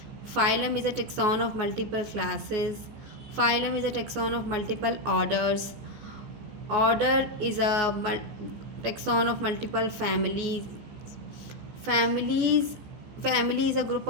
Phylum is a taxon of multiple classes. Phylum is a taxon of multiple orders. Order is a taxon of multiple families. Family is a group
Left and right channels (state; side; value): late; left; 14 ms